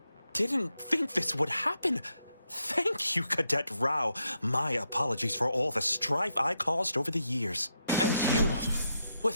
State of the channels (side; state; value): both; inverted; correlation -0.82